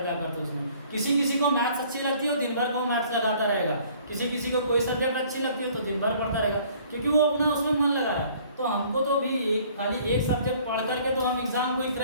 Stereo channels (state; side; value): inverted; both; correlation -0.56